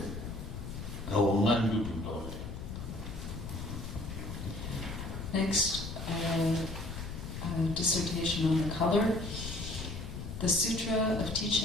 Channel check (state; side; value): noise; left; rumble, 7 dB below the sound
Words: Next, a dissertation on the color. The Sutra of